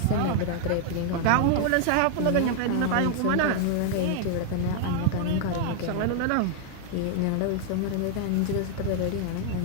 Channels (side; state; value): both; different; correlation 0.00